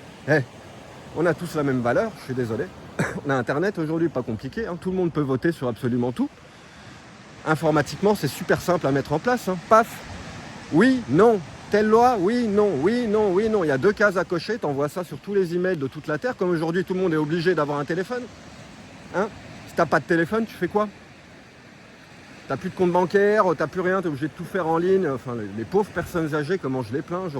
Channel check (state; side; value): identical; both; correlation 1.00